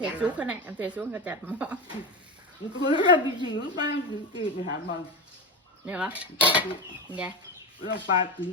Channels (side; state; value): both; normal; correlation 0.19